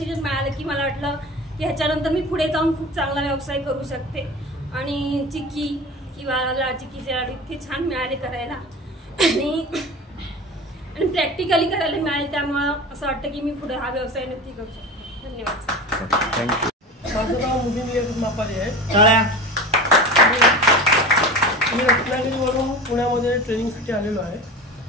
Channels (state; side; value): normal; both; correlation 0.33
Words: मिळालं की मला वाटलं की ह्याच्यानंतर मी पुढे जाऊन खूप चांगला व्यवसाय करू शकते. आणि चिक्की किंवा चिक्कीचे लाडू इतके छान मिळाले करायला आणि प्रॅक्टिकली करायला मिळाले. त्यामुळं असं वाटतं की मी पुढे हा व्यवसाय नक्की करू शकते. धन्यवाद. माझं नाव मुलीनी मापारी आहे. मी रत्नागिरीवरून पुण्यामध्ये ट्रेनिंगसाठी आलेलो आहे.